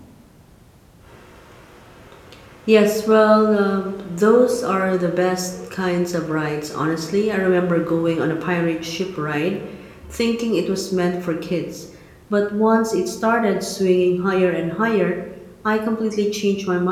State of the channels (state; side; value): identical; both; correlation 1.00